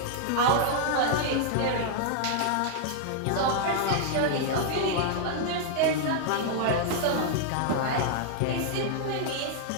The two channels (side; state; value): both; different; correlation -0.01